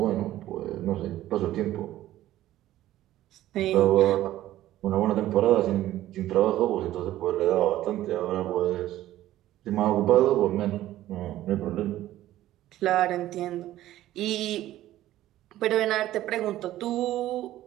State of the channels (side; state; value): left; quieter; 14.2 dB